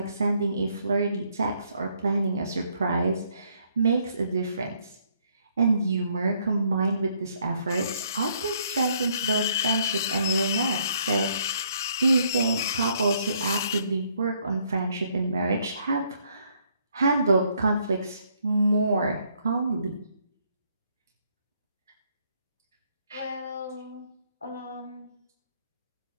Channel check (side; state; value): both; inverted; correlation -0.69